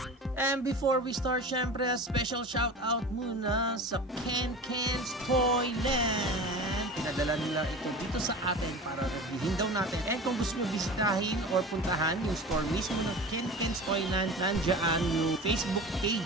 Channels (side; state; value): both; normal; correlation 0.34